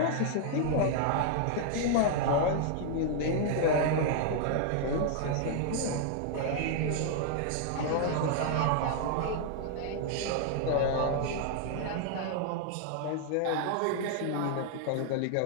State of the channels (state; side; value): different; both; correlation 0.00